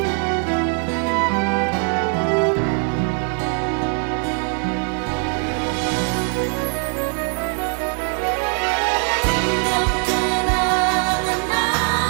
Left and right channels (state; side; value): quieter; left; 38.4 dB